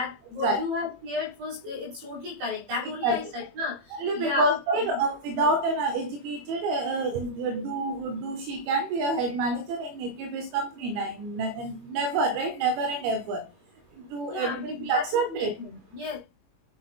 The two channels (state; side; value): late; left; 21 ms